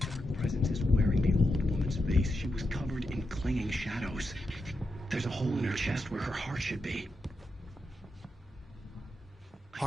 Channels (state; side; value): normal; both; correlation 0.86